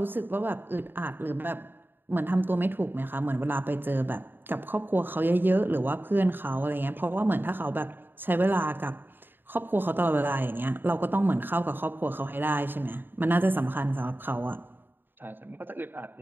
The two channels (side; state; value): left; late; 0.096 ms